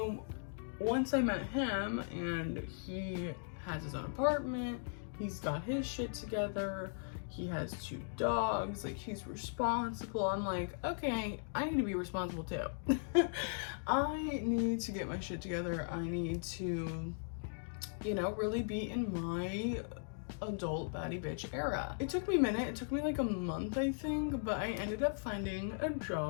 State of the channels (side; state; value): right; silent; digital silence